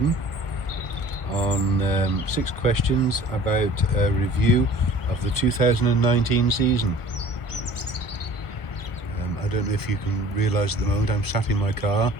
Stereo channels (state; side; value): late; right; 1.0 ms